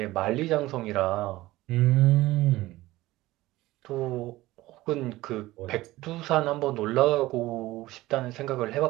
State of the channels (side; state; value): left; quieter; 17.8 dB